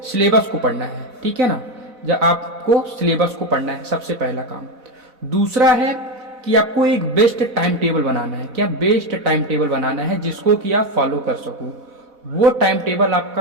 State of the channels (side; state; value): left; late; 4.1 ms